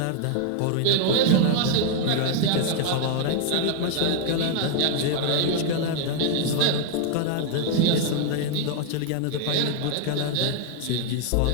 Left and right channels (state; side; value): different; both; correlation 0.00